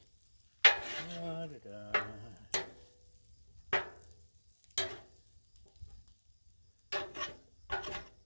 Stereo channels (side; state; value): both; inverted; correlation -1.00